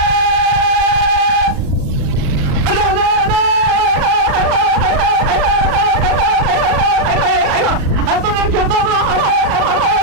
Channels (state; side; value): late; left; 35 ms